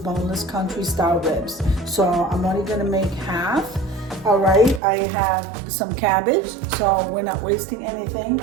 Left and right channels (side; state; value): left; drops out; at 4.8 s